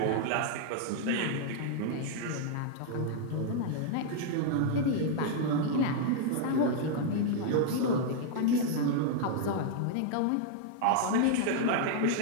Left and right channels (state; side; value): different; both; correlation -0.01